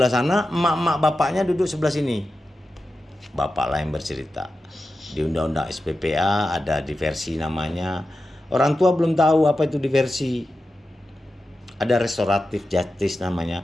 sana, emak-emak bapaknya duduk sebelah sini. Bapaklah yang bercerita. Di undang-undang SPPA ada diversi namanya. Orang tua belum tahu apa itu diversi. Ada restoratif justice namanya.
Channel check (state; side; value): normal; both; correlation 0.92